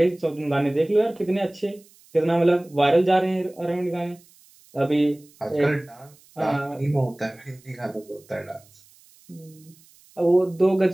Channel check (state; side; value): noise; right; hiss, 28 dB below the sound